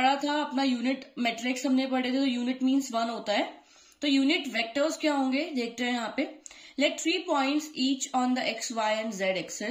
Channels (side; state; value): both; identical; correlation 1.00